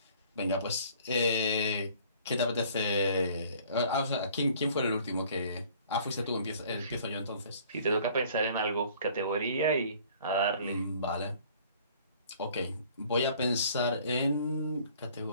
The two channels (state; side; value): inverted; both; correlation -0.54